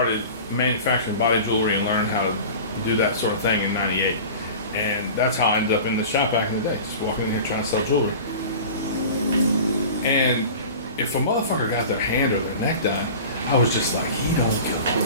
manufacturing body jewelry and learning how to do that sort of thing in '98. And that's how I ended up in the shop back in the day, just walking in here trying to sell jewelry. And if a motherfucker got their hand or their neck done, I was just like, he don't give a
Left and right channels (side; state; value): both; inverted; correlation -0.37